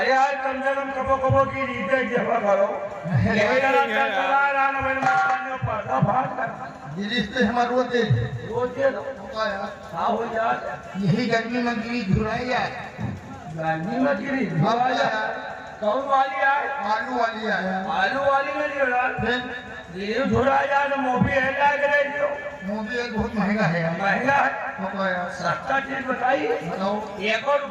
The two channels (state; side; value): identical; both; correlation 1.00